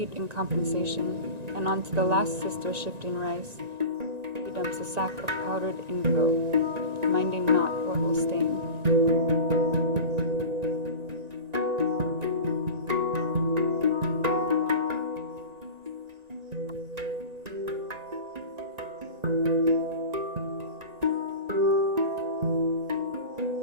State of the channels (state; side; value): late; left; 1.9 ms